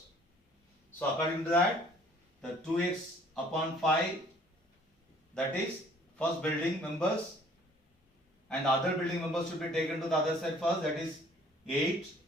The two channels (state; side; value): normal; both; correlation 0.56